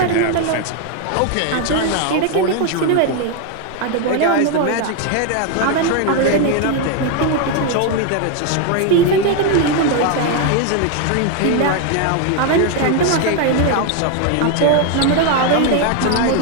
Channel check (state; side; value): different; both; correlation 0.01